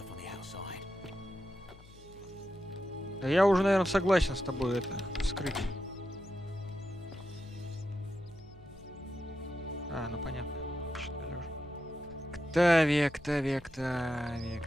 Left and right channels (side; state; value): left; noise; hum, 22 dB below the sound